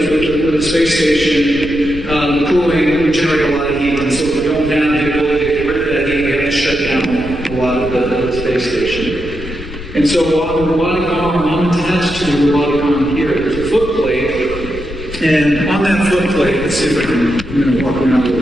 with the space station, the cooling we generate a lot of heat, and so if we don't have the ability to get rid of that heat, we have to shut down a lot of the space station. And so on the robotic arm, I'm attached to the robotic arm here. There's a foot plate, and on that foot plate, let's see if I can, I'm going to walk around with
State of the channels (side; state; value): left; noise; rumble, 11 dB below the sound